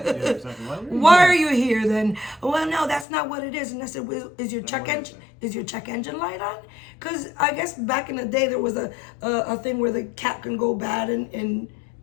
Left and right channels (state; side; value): drops out; right; at 3.1 s